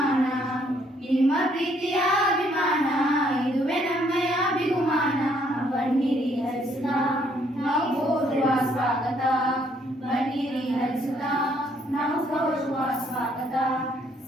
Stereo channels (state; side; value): normal; both; correlation 0.67